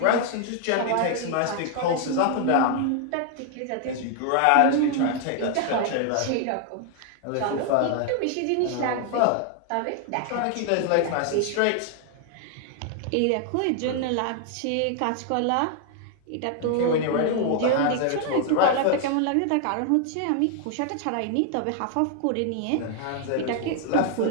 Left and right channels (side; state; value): both; different; correlation 0.00